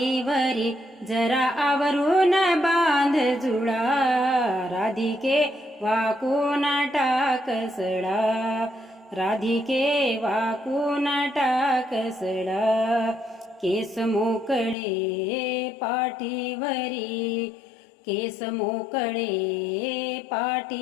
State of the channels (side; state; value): right; drops out; at 14.8 s